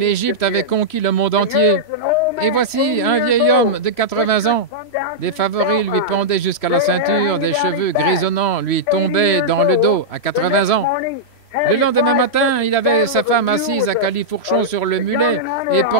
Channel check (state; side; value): late; right; 3.1 ms